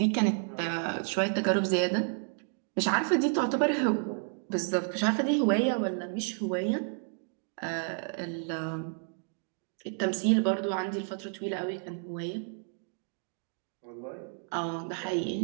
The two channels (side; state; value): left; silent; 57 dB below the other